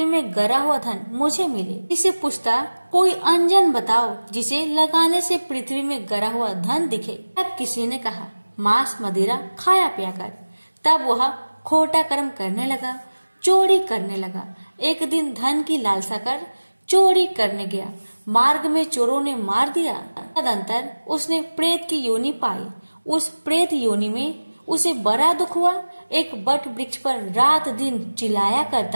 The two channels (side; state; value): both; inverted; correlation -1.00